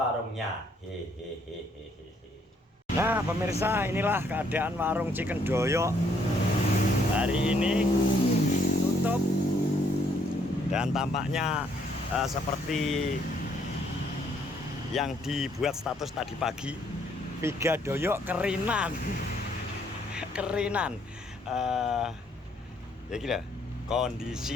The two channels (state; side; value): normal; both; correlation 0.68